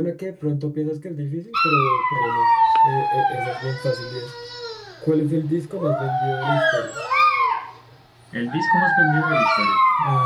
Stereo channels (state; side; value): identical; both; correlation 1.00